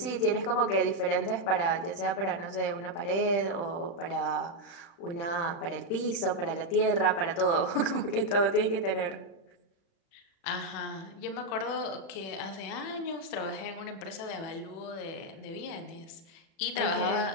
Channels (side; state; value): right; late; 35 ms